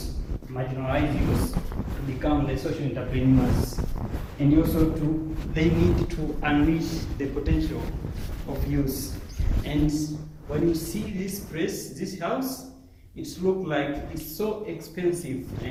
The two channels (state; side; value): identical; both; correlation 1.00